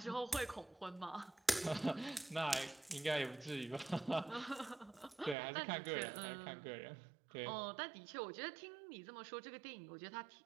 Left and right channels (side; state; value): left; drops out; at 5.4 s